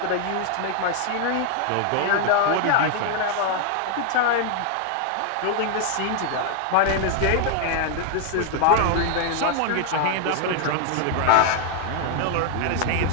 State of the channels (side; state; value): both; different; correlation 0.00